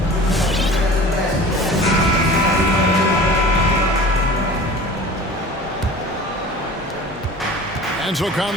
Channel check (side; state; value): both; normal; correlation 0.41